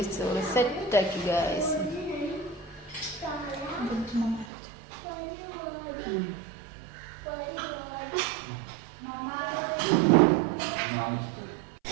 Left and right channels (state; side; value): drops out; left; at 4.5 s